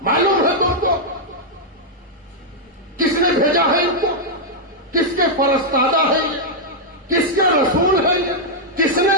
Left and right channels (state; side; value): normal; both; correlation -0.05